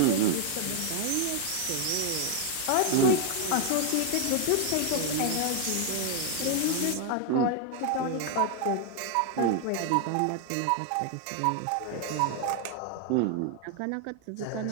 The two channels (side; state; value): both; different; correlation 0.01